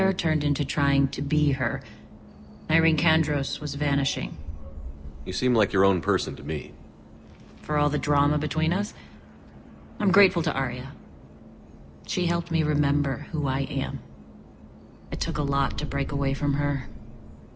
turned into trying to be her. Irene Kandros was vanishing. You seem like your own person to me. For all the drama between us, I'm grateful to Aria. She helped me remember who I am. It took a lot to break away from her,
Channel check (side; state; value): both; identical; correlation 1.00